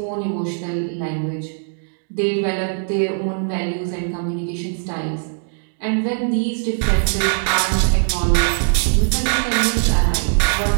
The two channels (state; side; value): silent; left; digital silence